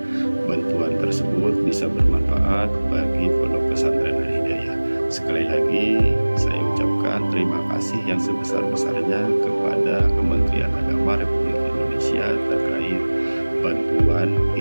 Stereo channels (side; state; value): both; inverted; correlation -1.00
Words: bantuan tersebut bisa bermanfaat bagi Pondok Pesantren Al Hidayah. Sekali lagi saya ucapkan terima kasih yang sebesar-besarnya kepada Kementerian Agama Republik Indonesia terkait bantuan